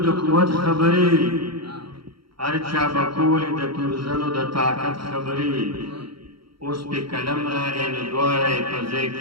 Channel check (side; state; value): left; late; 0.74 ms